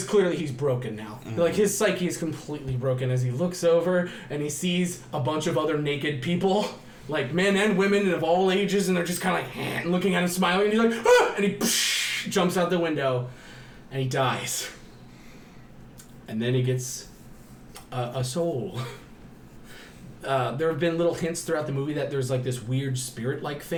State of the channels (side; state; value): both; identical; correlation 1.00